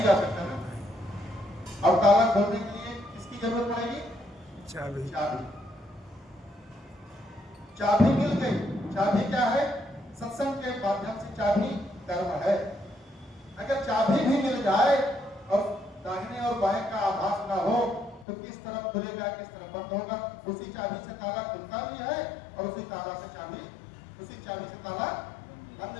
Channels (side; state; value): right; drops out; at 18.2 s